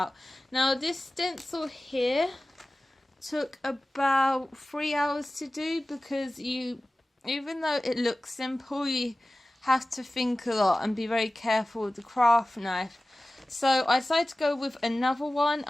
Now, this stencil here took about 3 hours to do, because even though it looks simple, you have to think a lot and be very careful with the craft knife. So I decided to go with another one.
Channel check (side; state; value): both; normal; correlation 0.97